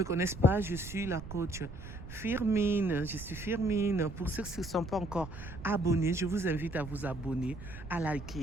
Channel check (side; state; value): right; noise; rumble, 12 dB below the sound